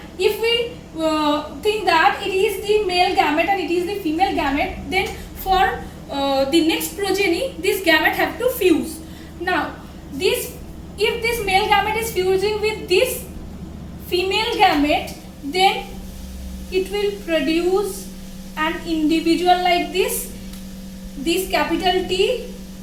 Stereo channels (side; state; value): both; identical; correlation 1.00